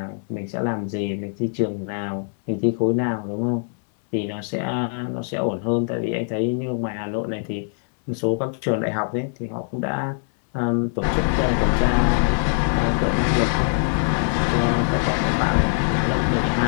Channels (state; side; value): silent; right; 64 dB below the other